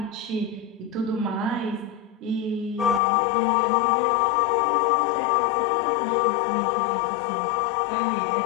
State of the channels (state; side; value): drops out; right; at 3.0 s